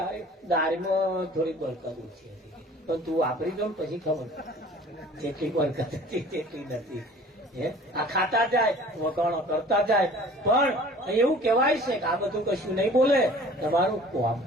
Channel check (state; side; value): normal; both; correlation 0.48